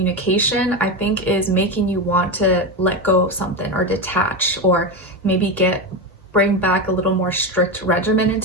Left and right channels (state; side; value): normal; both; correlation 0.15